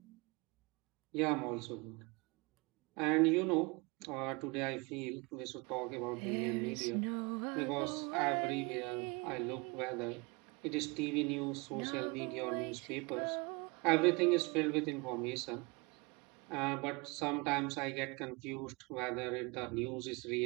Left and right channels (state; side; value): quieter; left; 27.7 dB